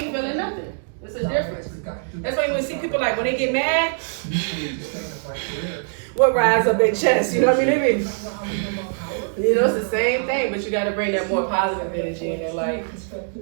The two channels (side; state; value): left; silent; digital silence